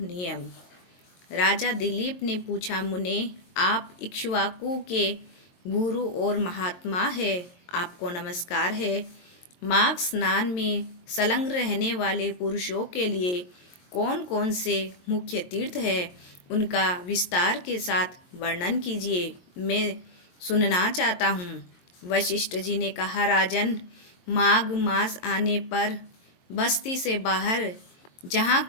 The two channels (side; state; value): right; late; 22 ms